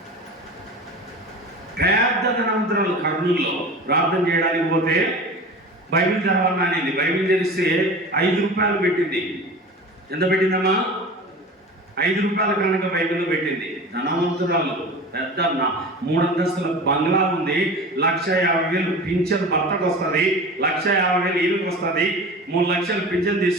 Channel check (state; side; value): normal; both; correlation 0.35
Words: పెద్ద ధనవంతురాలు కర్నూలులో ప్రార్థన చేయడానికి పోతే బైబిల్ చదవాలని అనేది. బైబిల్ తెరిస్తే 5 రూపాయలు పెట్టింది. ఎంత పెట్టిందమ్మా? 5 రూపాయల కనుక బైబిల్లో పెట్టింది. ధనవంతురాలు, పెద్ద 3 అంతస్తుల బంగ్లా ఉంది. 1,50,000 పింఛన్ భర్తకు వస్తుంది, 1,50,000 ఈయనకు వస్తుంది, 3 లక్షలు పింఛన్